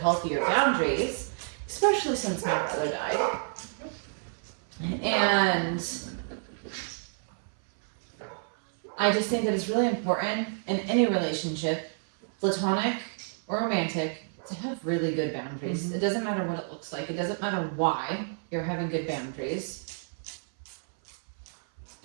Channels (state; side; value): silent; left; 58 dB below the other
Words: boundaries, especially since my brother died. And I just think that it's really important in any relationship, platonic or romantic, to have really good boundaries. Mm-hmm. It doesn't matter what it looks like. It doesn't matter why you're having good boundaries.